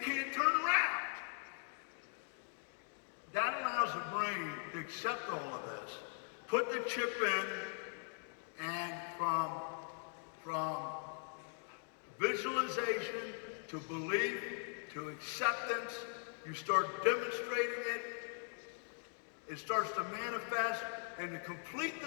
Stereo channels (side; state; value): right; silent; 51 dB below the other